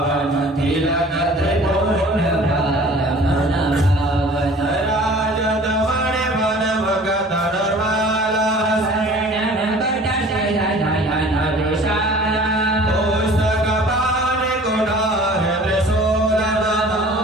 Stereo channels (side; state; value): both; normal; correlation 0.47